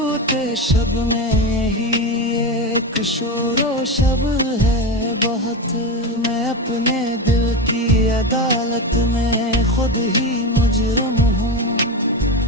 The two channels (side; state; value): both; normal; correlation 0.18